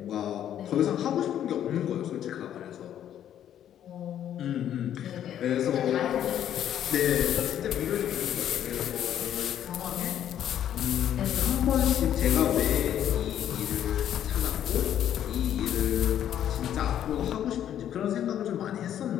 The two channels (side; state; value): right; quieter; 10.5 dB